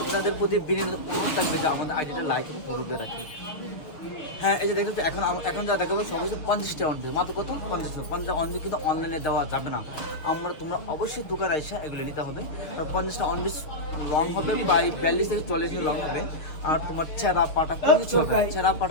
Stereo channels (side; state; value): right; late; 6.5 ms